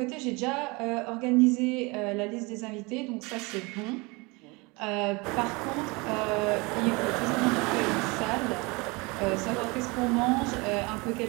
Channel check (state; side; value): quieter; left; 26.4 dB